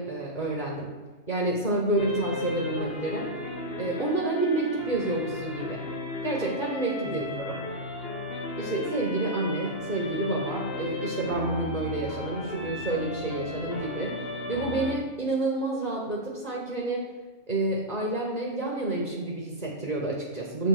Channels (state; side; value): late; right; 2.0 ms